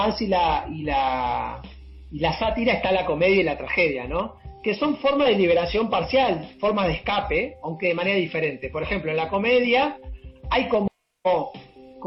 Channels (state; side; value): identical; both; correlation 1.00